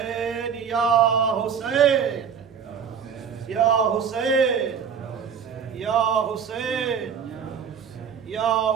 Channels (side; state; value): left; quieter; 7.1 dB